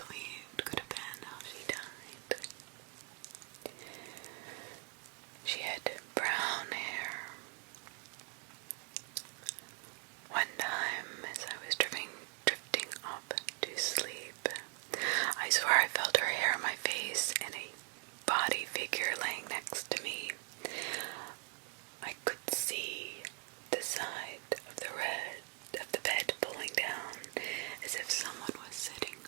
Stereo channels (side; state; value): left; quieter; 32.7 dB